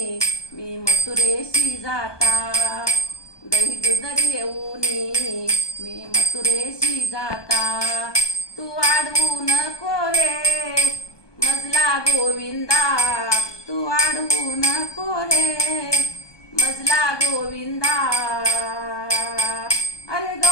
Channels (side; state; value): right; late; 1.2 ms